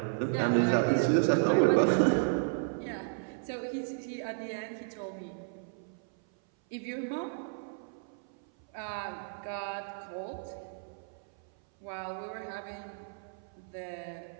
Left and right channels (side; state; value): left; silent; 56 dB below the other